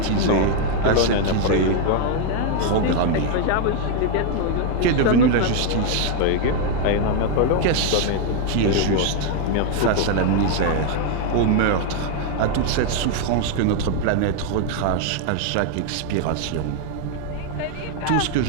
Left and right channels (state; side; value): different; both; correlation 0.00